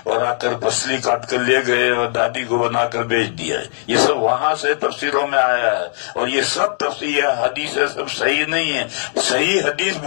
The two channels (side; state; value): right; silent; digital silence